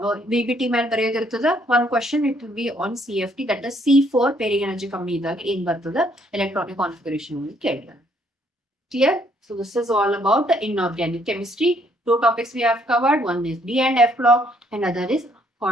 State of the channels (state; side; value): normal; both; correlation 0.67